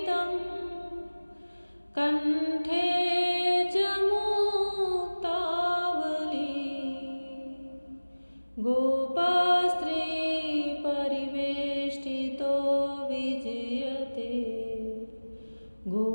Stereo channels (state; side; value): inverted; both; correlation -1.00